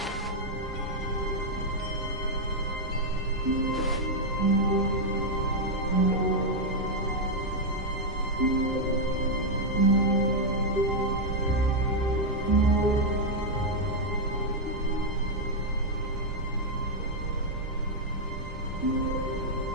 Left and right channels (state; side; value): normal; both; correlation -0.02